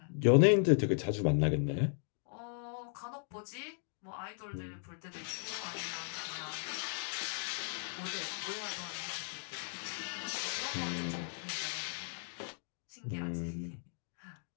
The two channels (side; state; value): right; silent; 53 dB below the other